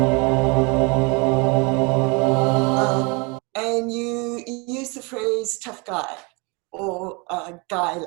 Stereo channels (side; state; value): left; quieter; 30.0 dB